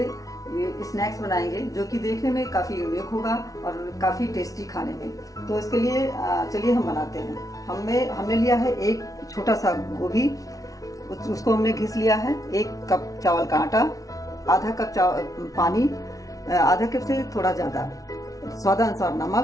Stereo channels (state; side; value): late; right; 0.17 ms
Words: स्नैक्स बनाएंगे जो कि देखने में काफ़ी यूनिक होगा और काफ़ी टेस्टी खाने में। तो इसके लिए चलिए हम बनाते हैं। हमने लिया है एक छोटा सा गोभी, उसको हमने घिस लिया है। 1 कप चावल का आटा, आधा कप पानी, आधा कप से थोड़ा ज़्यादा, स्वादानुसार